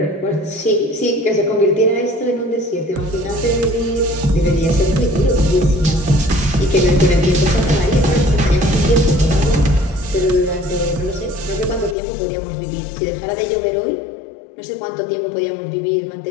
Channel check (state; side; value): drops out; right; at 12.0 s